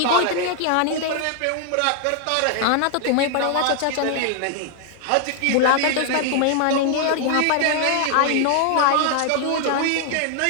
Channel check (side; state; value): both; different; correlation 0.00